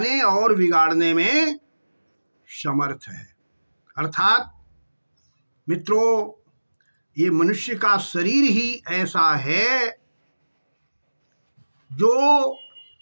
और बिगाड़ने में समर्थ है। अर्थात मित्रों, ये मनुष्य का शरीर ही ऐसा है जो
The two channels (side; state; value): both; inverted; correlation -1.00